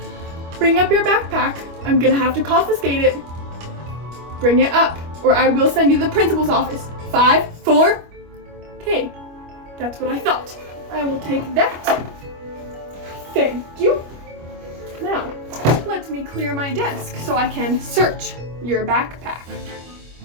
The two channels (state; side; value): late; left; 25 ms